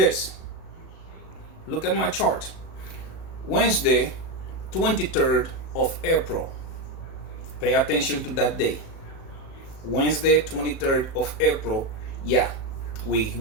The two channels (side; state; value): right; late; 37 ms